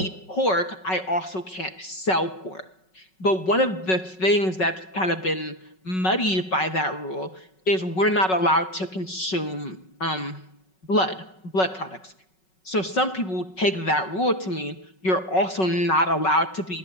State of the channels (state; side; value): late; right; 5.4 ms